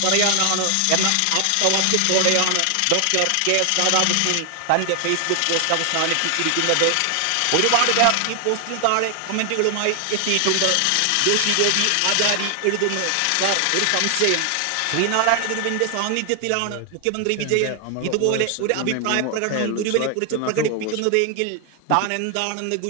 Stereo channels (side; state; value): both; different; correlation 0.00